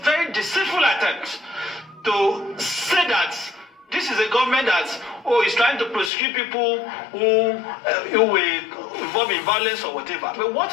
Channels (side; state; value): right; drops out; at 6.1 s